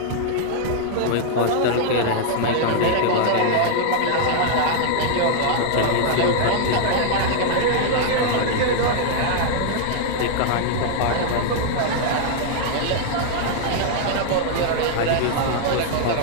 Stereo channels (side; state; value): both; different; correlation 0.00